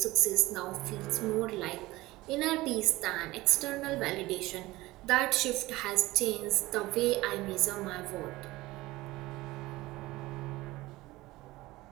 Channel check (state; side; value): quieter; left; 19.1 dB